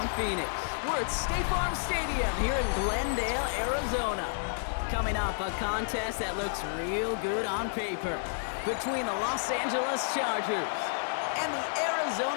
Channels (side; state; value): right; silent; 57 dB below the other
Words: Phoenix. We're at State Farm Stadium here in Glendale, Arizona. Coming up, a contest that looks real good on paper between the Los Angeles Chargers and the